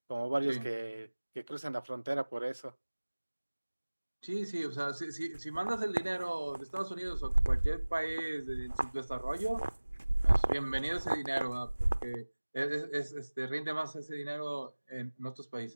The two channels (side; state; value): both; inverted; correlation -1.00